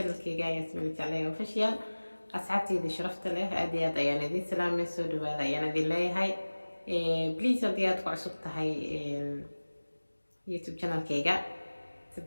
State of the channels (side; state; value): both; inverted; correlation -1.00